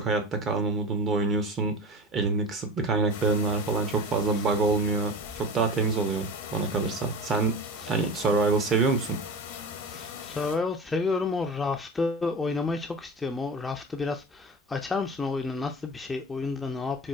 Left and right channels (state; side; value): normal; both; correlation 0.31